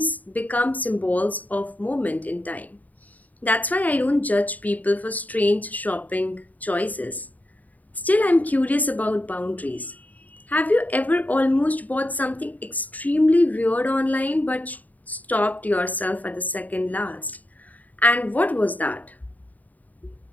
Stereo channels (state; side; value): late; right; 0.077 ms